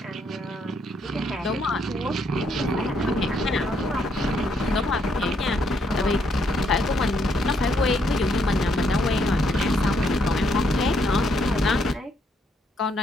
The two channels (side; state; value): both; normal; correlation 0.73